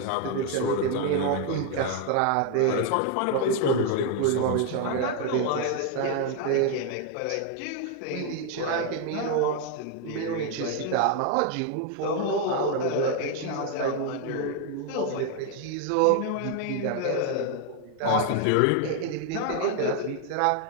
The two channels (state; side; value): different; both; correlation 0.01